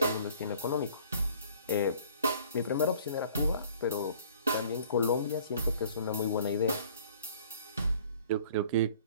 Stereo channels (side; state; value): both; inverted; correlation -0.53